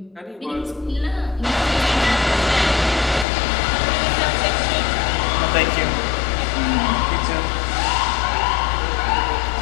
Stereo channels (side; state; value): right; drops out; at 3.2 s